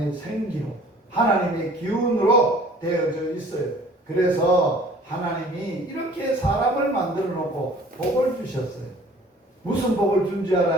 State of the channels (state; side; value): normal; both; correlation 0.51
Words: 생기로, 하나님의 기운으로 되어져 있어요. 그래서 하나님이 이렇게 사람을 만들어 놓고 복을 주셨어요. 무슨 복을 준지